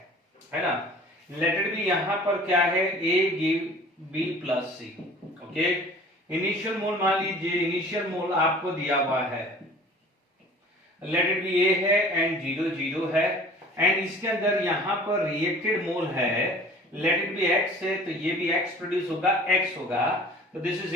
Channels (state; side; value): normal; both; correlation 0.46